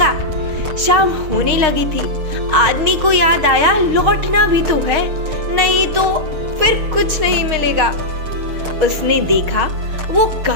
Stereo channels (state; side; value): late; left; 6.5 ms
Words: शाम होने लगी थी। आदमी को याद आया, लौटना भी तो है, नहीं तो फिर कुछ नहीं मिलेगा। उसने देखा वो